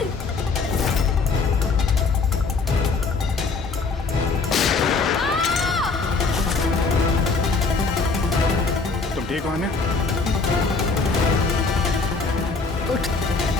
तुम ठीक हो आन्या? उठ।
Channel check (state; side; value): quieter; right; 4.3 dB